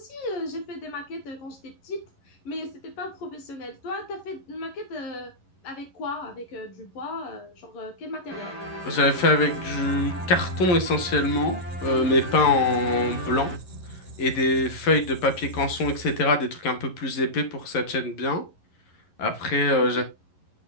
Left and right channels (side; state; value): right; late; 11 ms